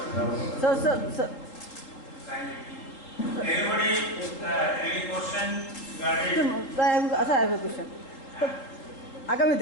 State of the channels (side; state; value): right; late; 3.8 ms